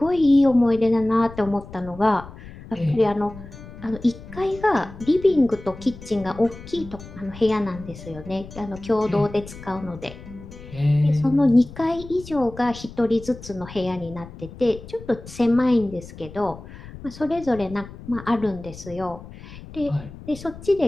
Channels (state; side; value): noise; left; rumble, 16 dB below the sound